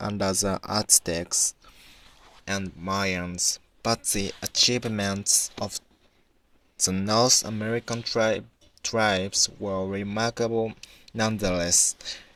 under the Aztecs and Mayans, but the achievements of the North American tribes were remarkable nonetheless.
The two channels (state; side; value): identical; both; correlation 1.00